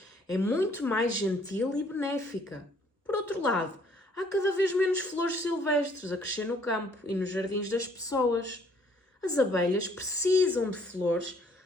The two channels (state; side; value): normal; both; correlation 0.62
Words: é muito mais gentil e benéfica. Por outro lado, há cada vez menos flores silvestres a crescer no campo e nos jardins das pessoas. As abelhas precisam de flores